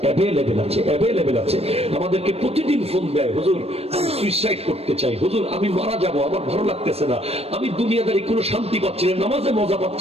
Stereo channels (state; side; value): late; left; 0.29 ms